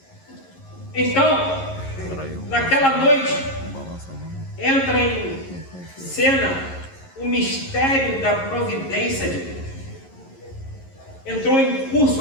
Então, naquela noite, entra em cena o mistério da providência de Deus. Entrou em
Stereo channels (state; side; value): late; right; 11 ms